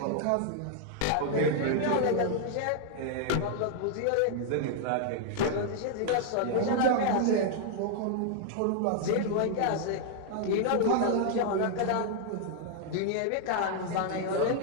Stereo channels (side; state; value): both; different; correlation 0.00